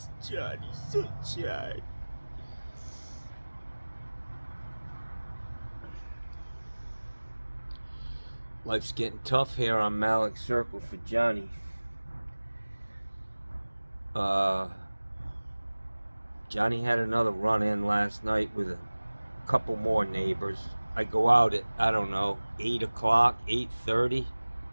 Johnny Sunshine. Life's getting tough here on Malik Circle for Johnny. Johnny had another run-in last night with a couple more neighbors. I go out at, 8 o'clock, 8:30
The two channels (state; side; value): inverted; both; correlation -1.00